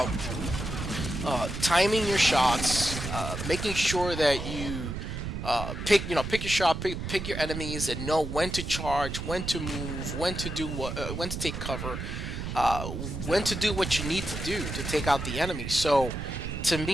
timing your shots, making sure that you pick your shot, pick your enemies, and know when to charge, when to move, when to do what, when to take cover, when to do what you need to do to take out the enemy. So to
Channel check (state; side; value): noise; right; rumble, 5 dB below the sound